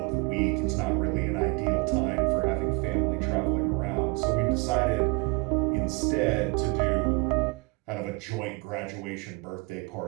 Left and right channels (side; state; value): left; quieter; 28.2 dB